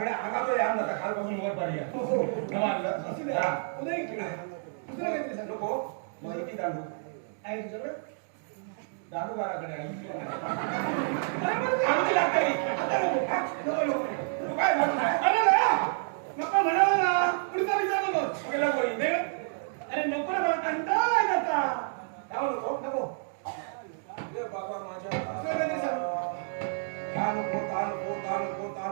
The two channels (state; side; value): silent; left; digital silence